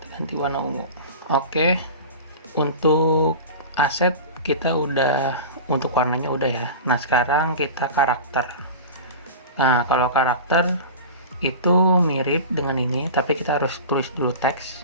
Ganti warna ungu. Oke, untuk aset kita udah, untuk warnanya udah ya. Nah sekarang kita karakter. Nah kalau karakter itu mirip dengan ini, tapi kita harus tulis dulu teks.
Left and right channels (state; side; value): inverted; both; correlation -0.32